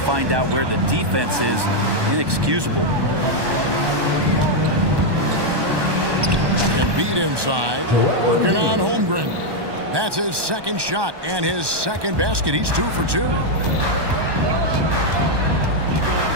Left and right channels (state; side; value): late; left; 1.2 ms